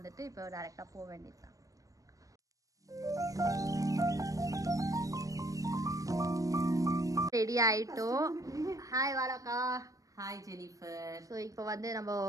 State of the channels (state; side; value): late; left; 0.16 ms